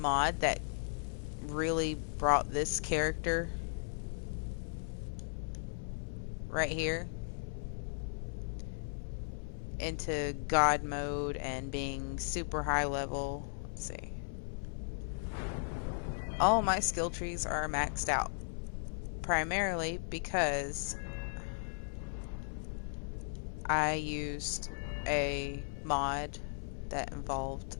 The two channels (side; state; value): right; silent; 53 dB below the other